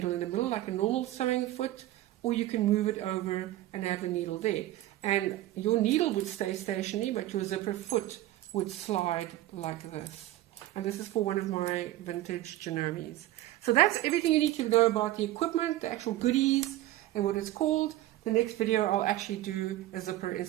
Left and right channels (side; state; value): left; quieter; 15.4 dB